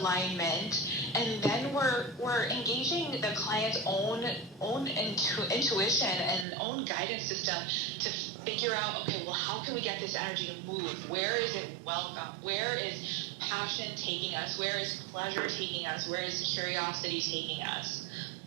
and then we're engaging the client's own intuition and own guidance system to figure out, okay, well, how can we get this energy to move? Where is it welcome? Where is passion taking us? Where is pleasure taking us? Where is curiosity taking us?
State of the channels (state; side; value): drops out; left; at 6.5 s